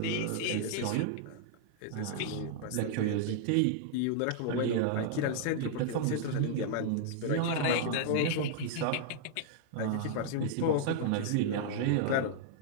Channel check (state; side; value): different; both; correlation -0.01